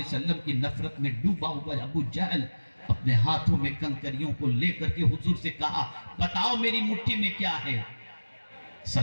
وسلم کی نفرت میں ڈوبا ہوا ابو جہل اپنے ہاتھوں میں کنکریوں کو لے کر کے حضور سے کہا بتاؤ میری مٹھی میں کیا ہے؟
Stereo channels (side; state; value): both; inverted; correlation -1.00